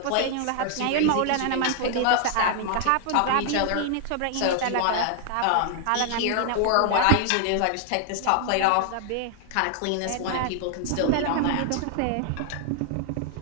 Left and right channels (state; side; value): different; both; correlation 0.00